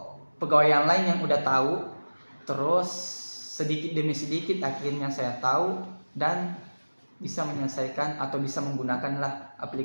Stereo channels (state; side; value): inverted; both; correlation -1.00